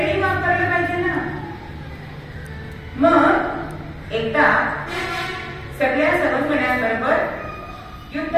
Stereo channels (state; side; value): identical; both; correlation 1.00